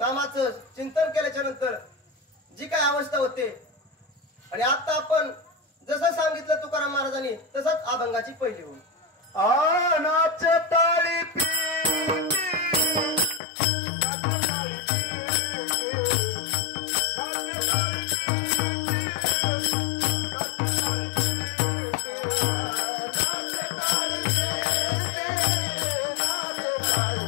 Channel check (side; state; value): right; drops out; at 13.4 s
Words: चिंतन केल्याच्या नंतर जी काय अवस्था होते. आणि आता आपण जसं सांगितलं तुकाराम महाराजांनी तसंच अभंगाची पहिली होईल. नाचे टाळी